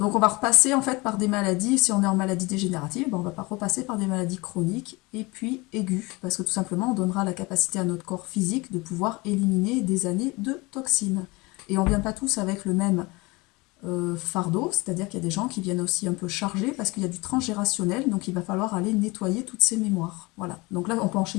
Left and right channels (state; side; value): quieter; right; 24.3 dB